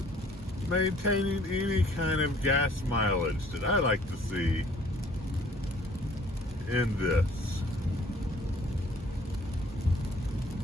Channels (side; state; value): both; normal; correlation 0.57